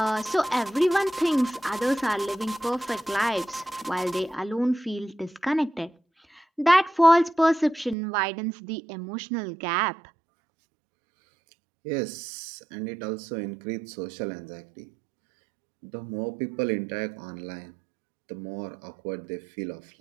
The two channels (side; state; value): left; drops out; at 8.0 s